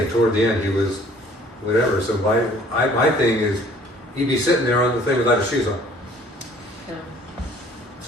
toward the end, he was whatever. So my thing is, he'd be sitting there on the thing without his shoes on. Yeah.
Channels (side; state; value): both; normal; correlation 0.55